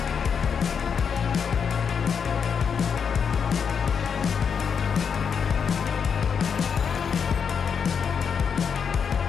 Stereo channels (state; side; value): quieter; right; 6.7 dB